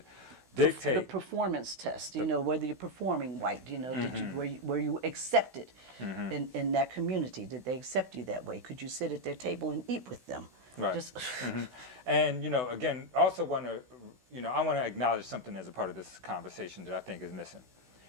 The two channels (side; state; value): left; late; 16 ms